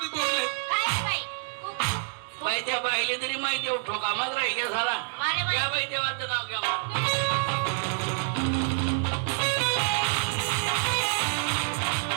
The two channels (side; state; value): left; silent; 56 dB below the other